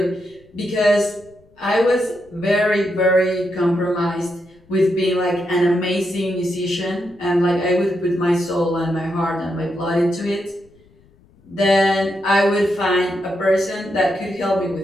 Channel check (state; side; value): noise; left; rumble, 30 dB below the sound